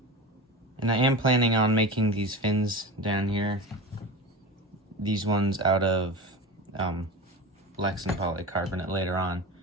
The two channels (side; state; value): both; normal; correlation 0.28